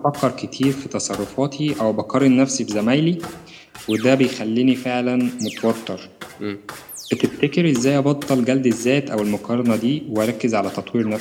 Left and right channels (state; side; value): identical; both; correlation 1.00